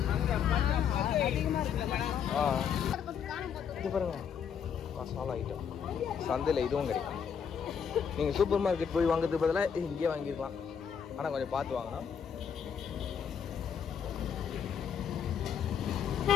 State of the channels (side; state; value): right; quieter; 7.5 dB